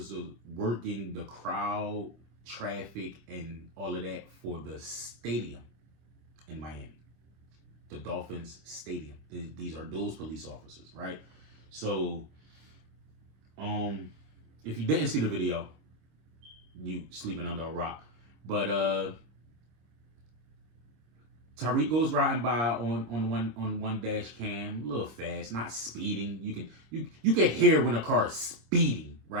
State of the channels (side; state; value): left; late; 26 ms